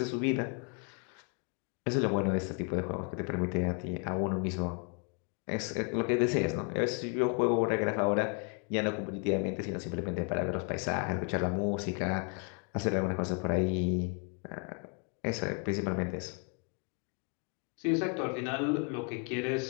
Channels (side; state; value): right; quieter; 37.7 dB